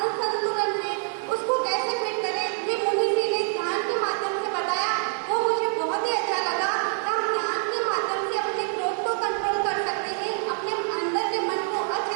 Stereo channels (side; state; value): left; silent; 61 dB below the other